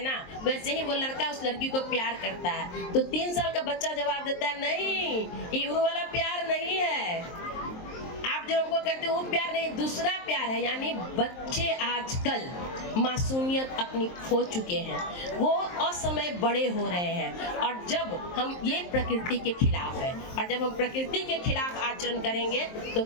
ना, वैसे ही वो लड़का उस लड़की को प्यार करता है। तो 3 साल का बच्चा जवाब देता है नहीं, ये वो वाला प्यार नहीं है, आप जो हमको करते हो वो प्यार नहीं, दूसरा प्यार है। यानी बच्चे आजकल मासूमियत अपनी खो चुके हैं, वो असमय बड़े हो रहे हैं। और जब हम ये प्रकृति के खिलाफ है, और जब हम प्रकृति के खिलाफ आचरण करेंगे तो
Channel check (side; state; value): right; late; 23 ms